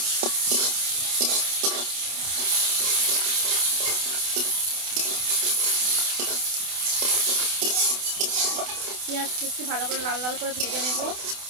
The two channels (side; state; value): left; late; 28 ms